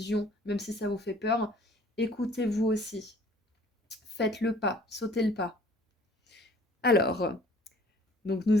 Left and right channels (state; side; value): normal; both; correlation 0.53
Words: même si ça vous fait peur, écoutez-vous aussi. Faites le pas, sautez le pas. Alors, donc